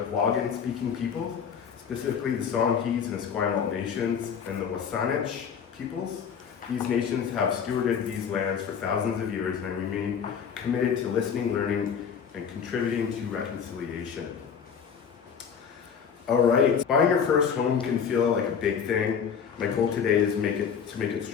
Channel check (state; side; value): quieter; right; 7.1 dB